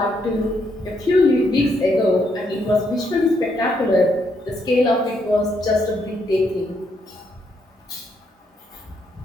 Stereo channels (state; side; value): normal; both; correlation 0.75